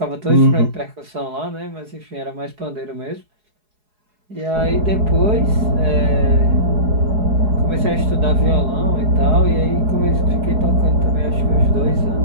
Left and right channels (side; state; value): left; late; 4.7 ms